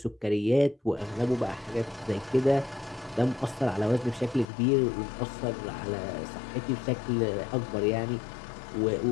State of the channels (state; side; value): drops out; right; at 4.5 s